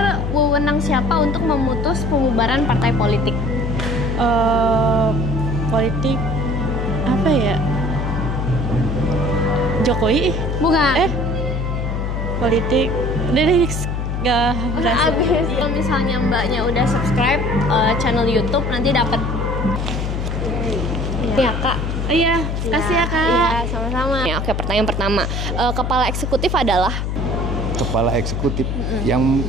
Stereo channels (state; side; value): noise; left; hum, 2 dB below the sound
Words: wewenang siapa untuk memutus pembubaran partai politik? Politik apa ya? Jokowi? Bukan. Politik. Dari next. Gak berhasil. Abis. Kalau misalnya mbaknya udah subscribe channel YouTube, nanti dapat. Ya Kak. Iya, kasih ya Kak. Iya, sama-sama. Ya, oke, pertanyaan pertama, kepala eksekutif adalah? Kepala eksekutif yang